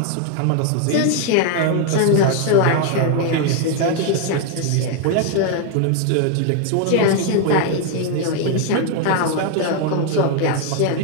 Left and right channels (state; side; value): different; both; correlation 0.00